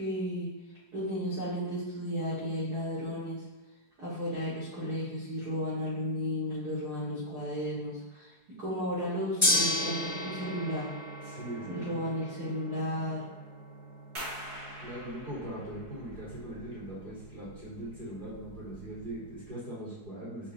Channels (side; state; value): left; late; 4.7 ms